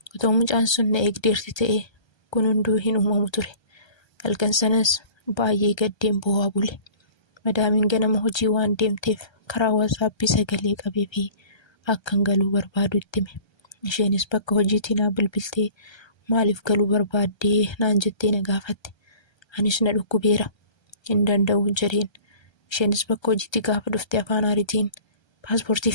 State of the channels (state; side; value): late; right; 1.3 ms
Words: Otoo mucaan sun na eegdeerti ta'e kun hunduu hin uumamu ture. Halkan sanas baay'ee gaddeen boo'aa bule. Madaamiin ganama hojii waan deemteef karaa WhatsApp sagalee qabee fi akkan galuu barbaadu itti hime. Isheenis bakka hojiitii naa bilbiltee maaliif galuu barbaaddee naan jettee na gaafatte. Anis na dhukkubeera hin danda'u jedheen. Isheenis bakka hojiitti gaafa dhufte afaan Amaaritiin paaspoortii